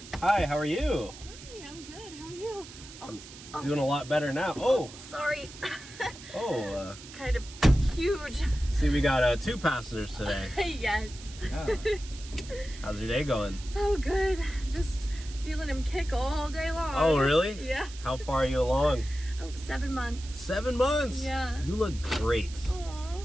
Hi, how are you? Hi, I'm good. How are you? I'm doing a lot better now. Oh! Sorry. Oh, Kind of huge. see, we got 2 passengers today. Yes. Yeah. How's your day going? Oh, good. Just feeling him kick all day long. Oh, really? Yeah. How far are you along? Oh, 7 months. 7 months? Yeah. You look great Aw,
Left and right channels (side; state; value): right; noise; hiss, 16 dB below the sound